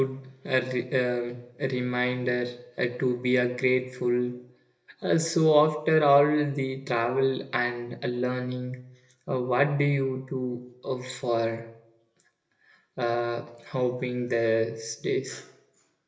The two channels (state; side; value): identical; both; correlation 1.00